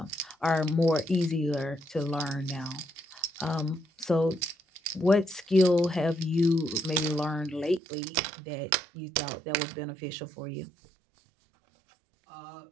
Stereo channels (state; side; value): drops out; left; at 7.8 s